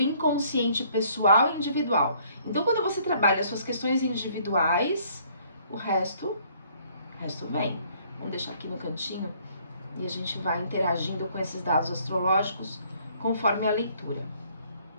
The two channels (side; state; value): both; inverted; correlation -0.62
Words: pessoal e individual. Então, quando você trabalha as suas questões individuais, o resto vem. Vamos deixar aqui no cantinho e a gente vai interagindo com esses dados astrológicos conforme a leitura.